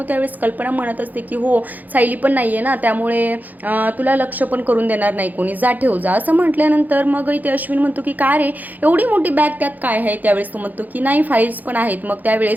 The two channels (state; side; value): late; left; 0.082 ms